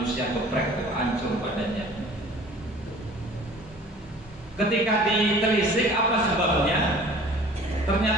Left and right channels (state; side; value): normal; both; correlation 0.47